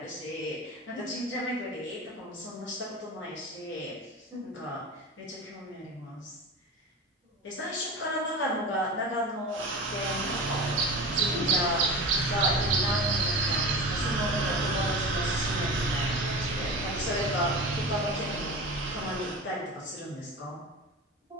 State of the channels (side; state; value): both; normal; correlation 0.30